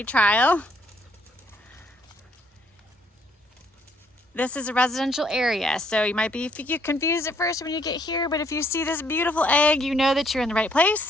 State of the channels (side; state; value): both; normal; correlation 0.68